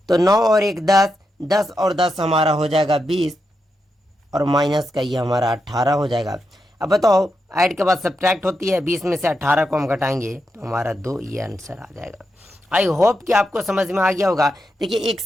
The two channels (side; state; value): both; normal; correlation 0.85